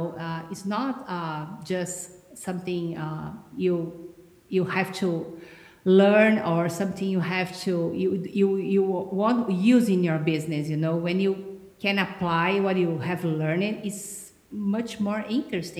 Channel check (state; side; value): identical; both; correlation 1.00